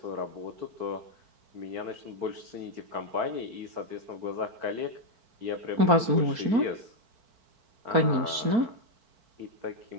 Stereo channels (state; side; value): late; left; 4.5 ms